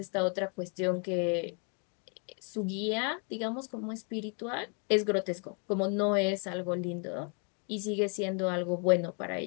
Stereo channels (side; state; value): right; quieter; 38.5 dB